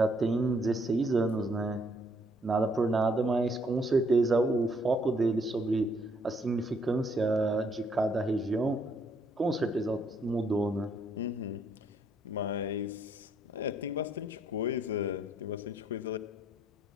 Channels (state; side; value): normal; both; correlation 0.69